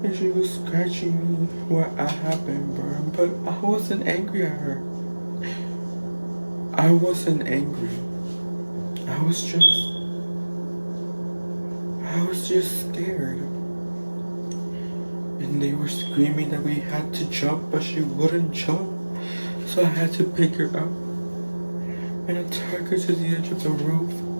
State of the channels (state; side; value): inverted; both; correlation -1.00